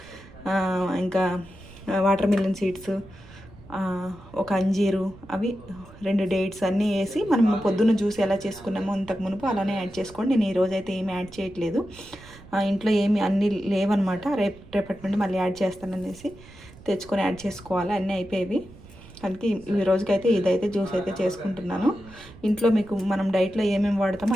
ఇంకా వాటర్ మిలన్ సీడ్స్, ఒక అంజీరు, అవి 2 డేట్స్ అన్నీ వేసి మనం పొద్దున్న జ్యూస్ ఎలా చేసుకున్నామో ఇంతకు మునుపు అలానే యాడ్ చేసుకోండి. నేను ఈరోజు అయితే ఏమి యాడ్ చేయట్లేదు, ఇంట్లో ఏమి అన్నీ లేవన్నమాట. రేపటి నుండి మళ్ళీ యాడ్ చేస్తాననేసి తెచ్చుకొని యాడ్ చేసుకోవాలి. అన్నీ అయిపోయేవి. అందుకే ఈ రోజుకైతే ఇదైతే జ్యూస్ అయితే చేసుకుంటున్నాను. ఇంట్లో మీకు మనం డైట్లో ఏమేమి వాడతామో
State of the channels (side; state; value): right; noise; rumble, 21 dB below the sound